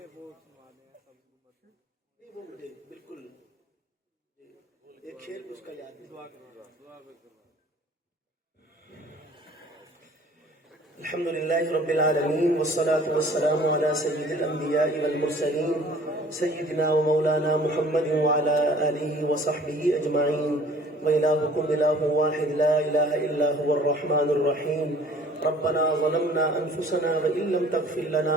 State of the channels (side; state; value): both; normal; correlation 0.51